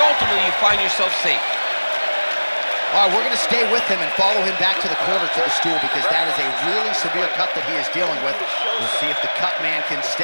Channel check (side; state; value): both; inverted; correlation -1.00